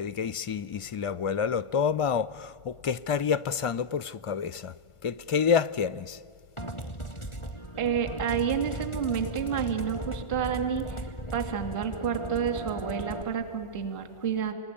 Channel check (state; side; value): late; right; 1.5 ms